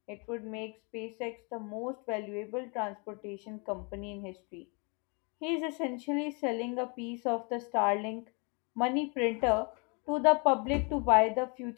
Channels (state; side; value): quieter; right; 33.0 dB